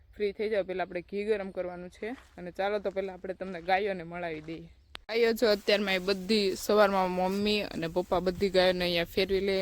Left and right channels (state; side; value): identical; both; correlation 1.00